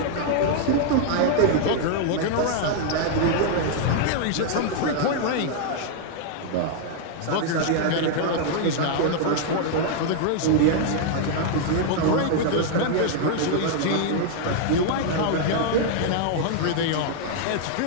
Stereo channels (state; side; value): different; both; correlation 0.00